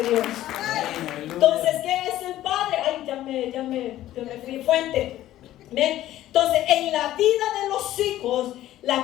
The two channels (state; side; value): quieter; right; 13.9 dB